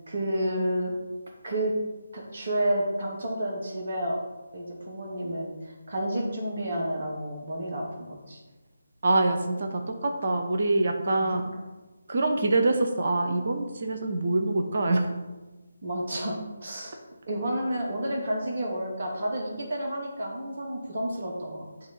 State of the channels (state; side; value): inverted; both; correlation -0.87